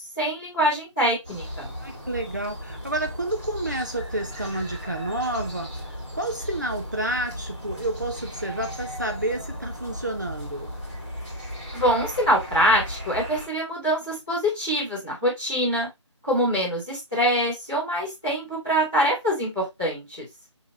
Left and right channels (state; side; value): normal; both; correlation 0.07